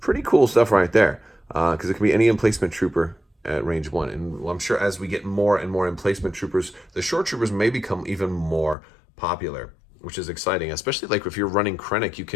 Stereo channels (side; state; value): right; drops out; at 8.8 s